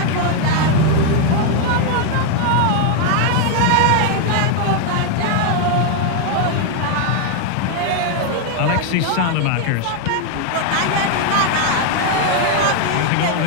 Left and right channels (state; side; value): different; both; correlation 0.00